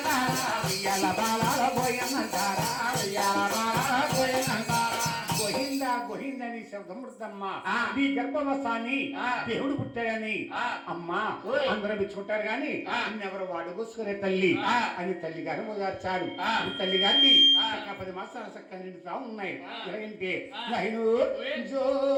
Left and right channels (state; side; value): identical; both; correlation 1.00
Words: ఉయ్యాల బాలాల గోయన్నంటారా ఉయ్యాల బాలాల గోయన్నంటారా గోహిందని శబ్దమృతమ్మ నీ గర్భవసాన్ని దేవుడు పుట్టాడని అమ్మా అందరూ మెచ్చుకుంటారు గాని ఎవరు వాడు కూసుకునే తల్లి అని తల్లి గారు మొదలర్చాడు తల్లి గారిని 10 మాసాల చక్క నిండుతా ఉన్నాయి ఎలాగంటే నైను జో